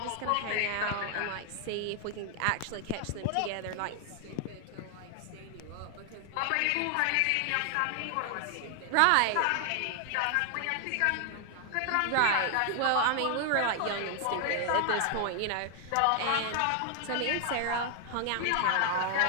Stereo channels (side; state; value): both; different; correlation 0.00